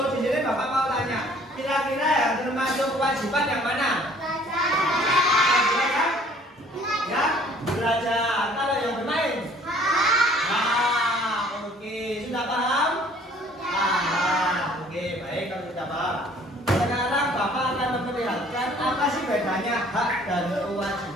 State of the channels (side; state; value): both; normal; correlation 0.56